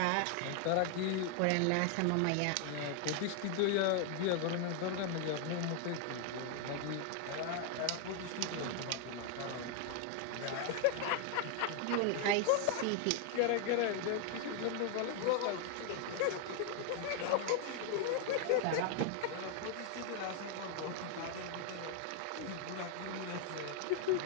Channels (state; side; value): different; both; correlation 0.00